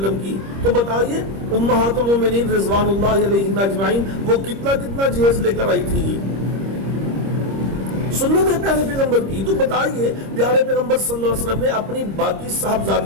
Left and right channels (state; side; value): late; left; 26 ms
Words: وسلم کی، تو بتائیے امہات المومنین رضوان اللہ علیہن اجمعین وہ کتنا جہیز لے کر آئی تھی؟ سنت ہے پیارے پیغمبر کی، تو بتائیے پیارے پیغمبر صلی اللہ علیہ وسلم نے اپنی باقی